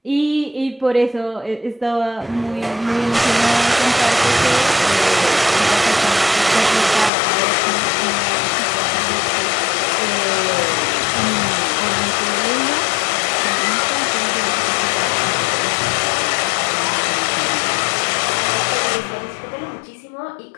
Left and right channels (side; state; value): right; drops out; at 7.1 s